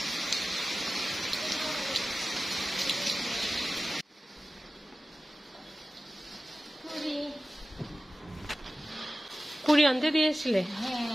পুরি আনতে দিয়েছিলে?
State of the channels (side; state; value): both; normal; correlation 0.95